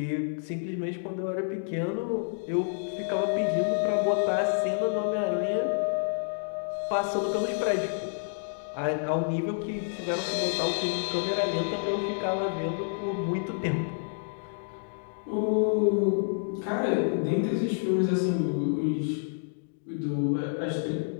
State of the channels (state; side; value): silent; right; digital silence